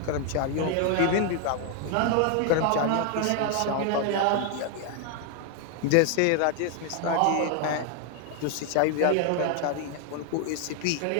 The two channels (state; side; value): different; both; correlation 0.00